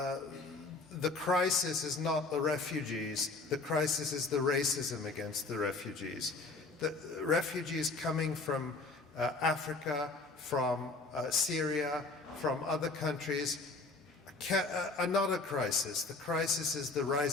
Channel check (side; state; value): right; quieter; 3.6 dB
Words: the crisis is not the refugees, the crisis is the racism against the refugees. The refugees coming from Africa, from Syria, from other countries are not a crisis. The crisis is the